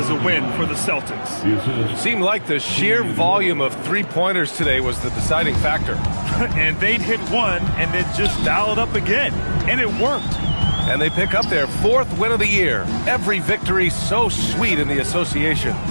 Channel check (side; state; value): both; inverted; correlation -1.00